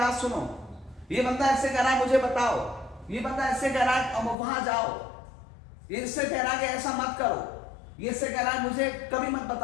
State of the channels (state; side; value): drops out; right; at 4.4 s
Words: सुनो, ये बंदा ऐसे कह रहा है, मुझे बताओ, ये बंदा ऐसे कह रहा है, अब वहां जाओ, ये इससे कह रहा है कि ऐसा मत करो, ये इससे कह रहा है मुझे कभी मत